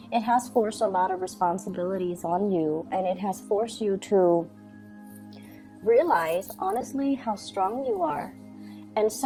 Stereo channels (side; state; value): both; identical; correlation 1.00